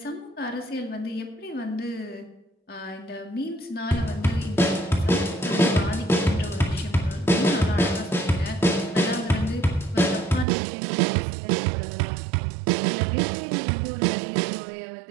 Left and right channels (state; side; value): drops out; left; at 10.5 s